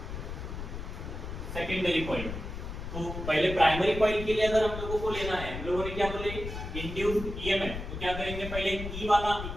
secondary coil. तो पहले प्राइमरी कॉइल के लिए अगर हम लोगों को लेना है, हम लोगों ने क्या बोले, इंड्यूस्ड ईएमएफ। तो क्या करेंगे, पहले ई वाला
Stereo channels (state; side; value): noise; left; rumble, 7 dB below the sound